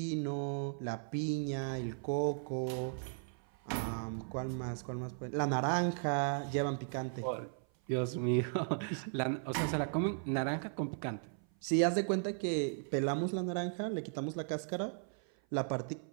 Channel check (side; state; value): left; silent; 53 dB below the other